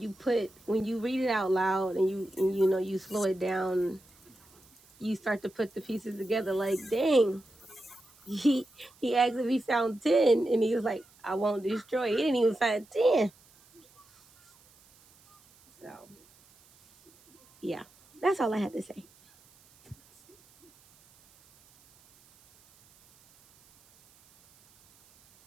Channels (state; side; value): noise; right; hiss, 29 dB below the sound